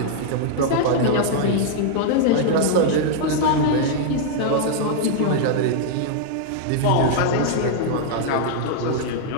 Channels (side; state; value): both; different; correlation -0.01